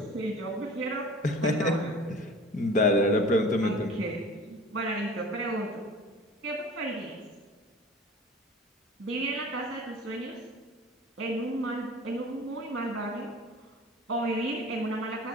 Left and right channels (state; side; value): normal; both; correlation 0.42